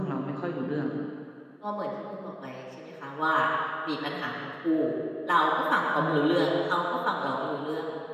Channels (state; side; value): identical; both; correlation 1.00